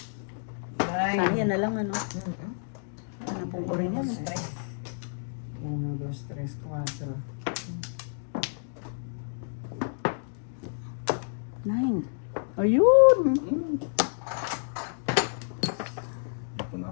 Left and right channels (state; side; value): silent; right; digital silence